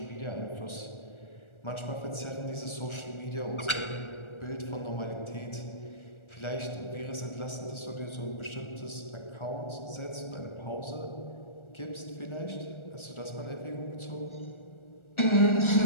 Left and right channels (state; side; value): late; right; 1.4 ms